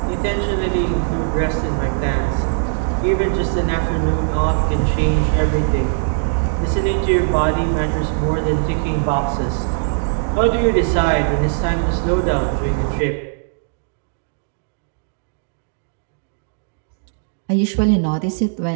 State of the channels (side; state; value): left; silent; digital silence